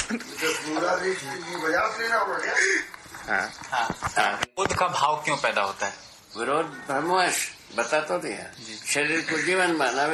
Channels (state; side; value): identical; both; correlation 1.00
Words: विरोध का भाव क्यों पैदा होता है? विरोध भ्रमवश बता तो दिया। शरीर को जीवन माना,